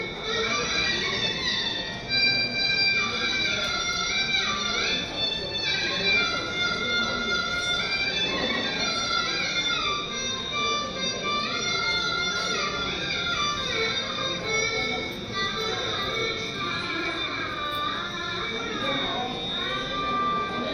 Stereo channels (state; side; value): identical; both; correlation 1.00